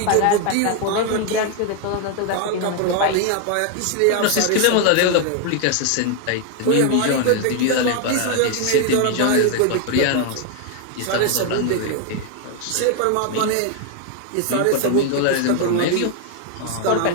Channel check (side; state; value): both; different; correlation 0.01